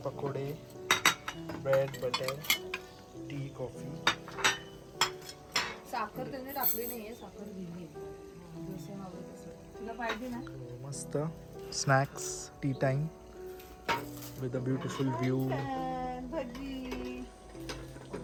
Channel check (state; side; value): identical; both; correlation 1.00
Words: पकोडे, ब्रेड, बटर, टी, कॉफी. साखर त्यांनी टाकली नाहीये, साखर दिली जसं हवं तसं. तुला पाहिजे ना? मस्त snacks tea time with a beautiful view. भजी